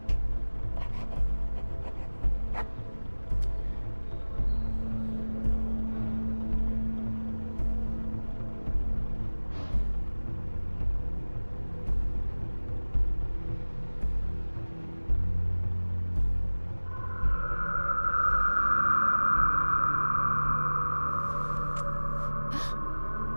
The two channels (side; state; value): both; inverted; correlation -1.00